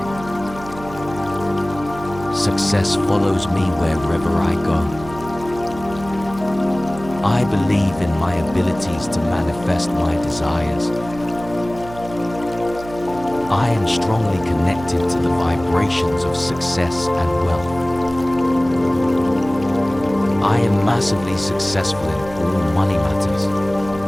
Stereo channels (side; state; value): right; noise; hum, 15 dB below the sound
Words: Success follows me wherever I go. I believe in my abilities to manifest my desires. I am strongly connected to the vibrations of success and wealth. I am massively successful in all money matters.